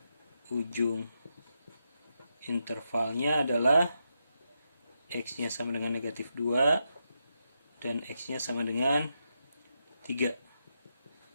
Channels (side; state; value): both; inverted; correlation -0.84